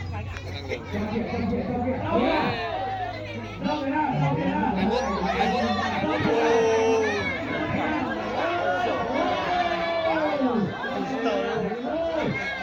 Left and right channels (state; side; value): identical; both; correlation 1.00